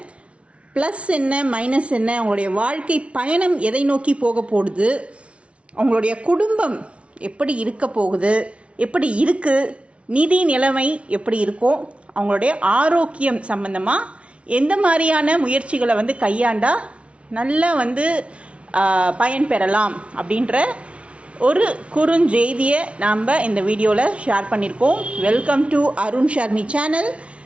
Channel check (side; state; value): left; late; 0.061 ms